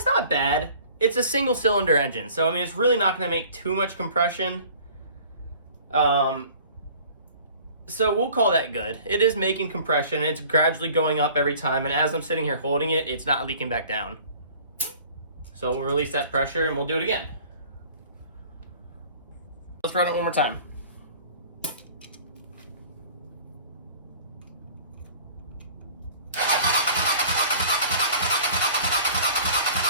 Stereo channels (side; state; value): both; inverted; correlation -0.49